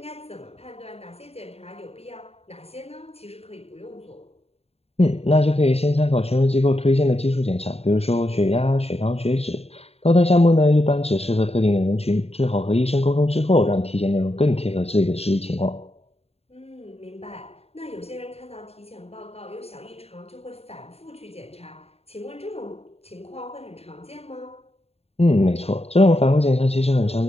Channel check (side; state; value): right; late; 0.29 ms